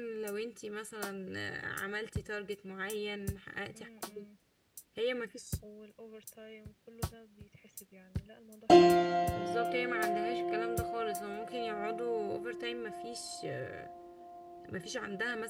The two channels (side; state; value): both; identical; correlation 1.00